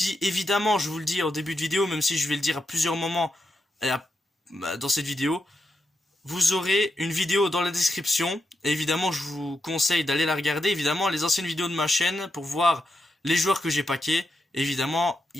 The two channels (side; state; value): both; normal; correlation 0.85